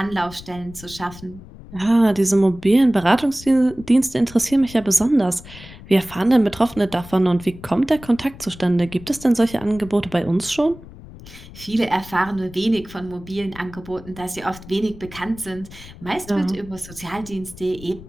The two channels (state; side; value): noise; left; rumble, 17 dB below the sound